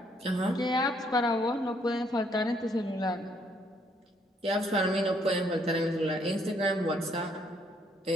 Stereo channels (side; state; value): both; normal; correlation 0.69